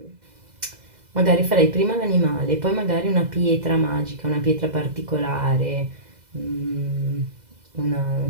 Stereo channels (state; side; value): late; left; 2.0 ms